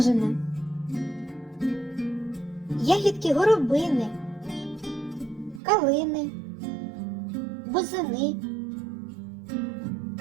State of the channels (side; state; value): left; drops out; at 5.6 s